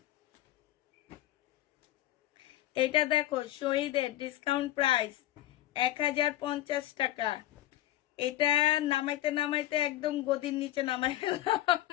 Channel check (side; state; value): right; quieter; 14.6 dB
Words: এটা দেখো শহীদের ডিসকাউন্ট প্রাইস 1050 টাকা। এটা নামাইতে নামাইতে একদম গদির নিচে নামাই ফেললাম।